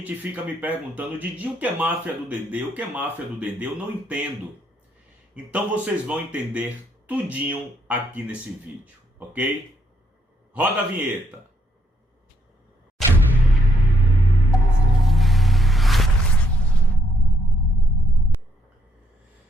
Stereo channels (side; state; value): both; normal; correlation 0.73